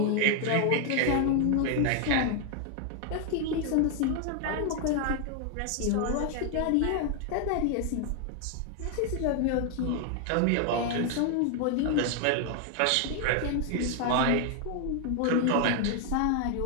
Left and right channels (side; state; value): both; different; correlation 0.00